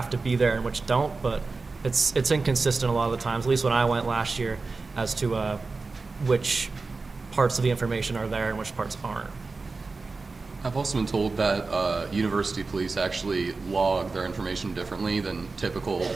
to be there and which don't, but it's inconsistent a lot of the times, at least when I went last year, as to which parts of the information are there and which parts aren't. I've also been told that university police actually log their information differently than typical,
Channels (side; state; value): left; quieter; 4.0 dB